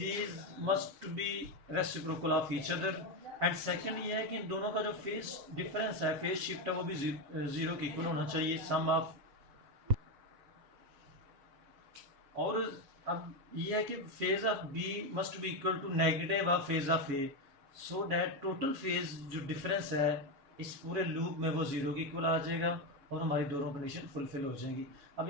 must be reciprocal of each other. And second ये है कि इन दोनों का जो फेज डिफरेंस है, फेज शिफ्ट है, वो भी 0 के इक्वल होना चाहिए, सम ऑफ. और अब ये है कि phase of B must be equal to negative of phase of A, so that total phase जो डिफरेंस है इस पूरे लूप में वो 0 के इक्वल आ जाएगा, और हमारी दोनों कंडीशन फुलफिल हो जाएंगी.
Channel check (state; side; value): late; left; 7.1 ms